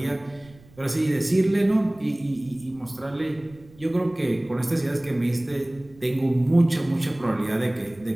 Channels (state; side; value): noise; right; rumble, 25 dB below the sound